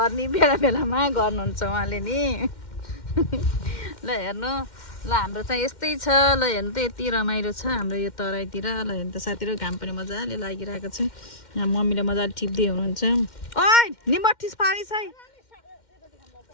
बेला बेलामा गर्नुहुन्छ उहाँले नि। ल हेर्नु, ल हाम्रो चाहिँ यस्तै छ। ल हेर्नु त यति रमाइलो छ हाम्रो यो तराईतिर। ल हेर्नु त साथीहरू, घाम पनि मजाले लागिरहेको छ। यहाँ मम्मीले मजाले टिप्दै हुनुहुन्छ। ओइ निमठिस पारिस है।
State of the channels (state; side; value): late; right; 2.1 ms